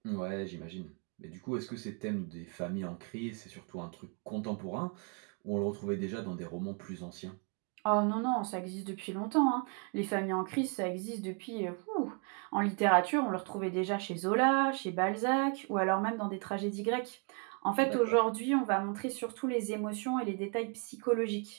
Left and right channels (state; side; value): quieter; left; 37.1 dB